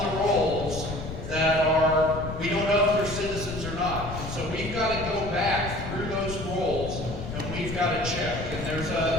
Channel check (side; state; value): left; noise; rumble, 8 dB below the sound